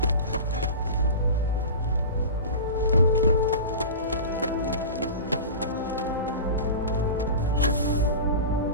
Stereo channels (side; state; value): both; inverted; correlation -0.31